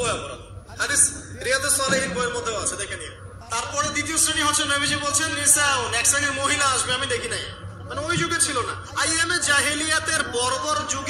অপরাধী। হাদিস রিয়াদুস সালিহিন বইয়ের মধ্যেও আছে, দেখে নিন। তারপরে দ্বিতীয় শ্রেণী হচ্ছে, নবীজি বলছেন, নিসাউন, এক শ্রেণীর মহিলা আসবে, আমি দেখি নাই, মানে ওই যুগে ছিল না। আইয়ামে জাহিলিয়াতের বর্বর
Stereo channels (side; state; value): both; identical; correlation 1.00